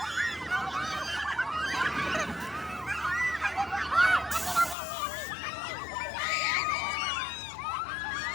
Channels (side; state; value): right; drops out; at 4.8 s